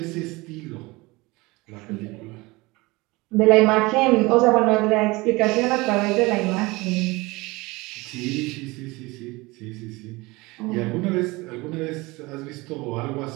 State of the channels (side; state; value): left; quieter; 22.9 dB